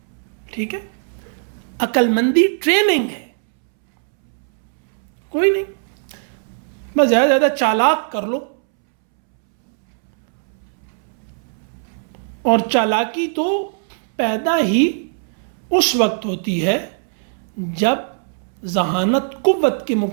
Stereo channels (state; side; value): silent; left; 66 dB below the other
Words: ٹھیک ہے، عقل مندی ٹریننگ ہے. کوئی نہیں، بس زیادہ سے زیادہ چالاک کر لو. اور چالاکی تو پیدا ہی اس وقت ہوتی ہے جب ذہانت قوت کے